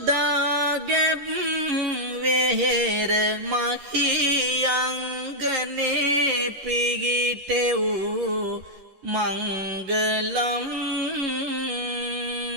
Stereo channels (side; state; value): left; late; 11 ms